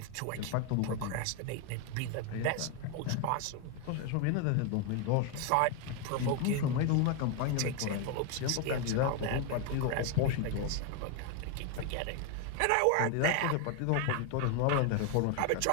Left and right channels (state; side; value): different; both; correlation 0.01